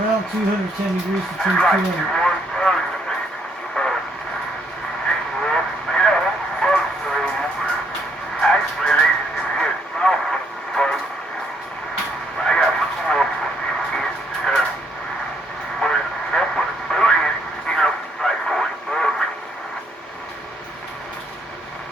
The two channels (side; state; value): both; normal; correlation 0.70